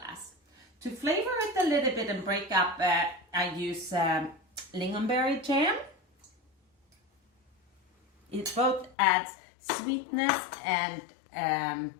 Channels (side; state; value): right; drops out; at 9.0 s